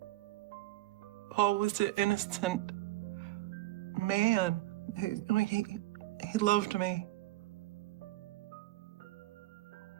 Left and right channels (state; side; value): quieter; left; 17.9 dB